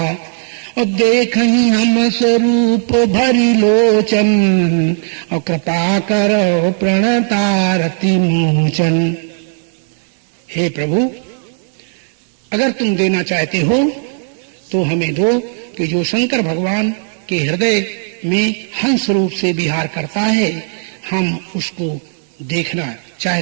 और देखही हम स्वरूप भरी लोचन, और कृपा करो प्रणतारति मोचन। हे प्रभु, अगर तुम देना चाहते हो तो हमें दो कि जो शंकर भगवान के हृदय में हंस रूप से विहार करता है, हम उसको देखना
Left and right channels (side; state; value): left; silent; digital silence